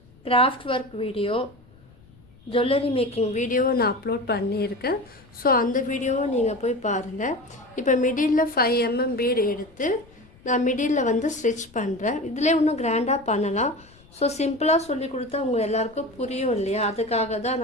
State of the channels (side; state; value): left; noise; rumble, 27 dB below the sound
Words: craft work video, jewellery making வீடியோவை நான் அப்லோட் பண்ணியிருக்கேன். ஸோ அந்த வீடியோவை நீங்கள் போய் பாருங்கள். இப்போ மிடில் 5 mm பீடு எடுத்து நான் மிடில் வந்து ஸ்டிச் பண்ணுறேன். இதிலே இன்னும் கிராண்டாக பண்ணலாம். ஸோ சிம்பிளாக சொல்லி கொடுத்தா உங்கள் எல்லாருக்கும் புரியும் இல்லையா, அதுக்காக தான்